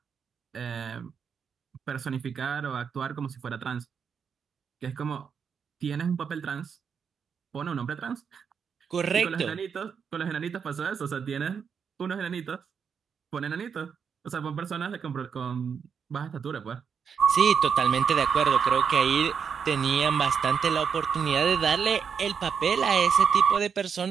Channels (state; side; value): quieter; left; 6.7 dB